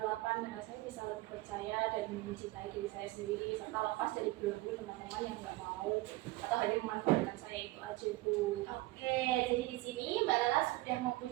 8 karena saya bisa lebih percaya dan mencintai diri saya sendiri serta lepas dari belenggu teman-teman yang nggak mau atau hanya memanfaatkan saya, itu aja Bu. Oke, jadi di sini Mbak Lala sudah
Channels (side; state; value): left; quieter; 19.4 dB